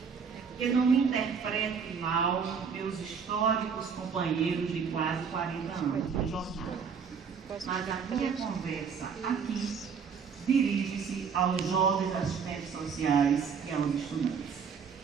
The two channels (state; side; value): quieter; left; 6.3 dB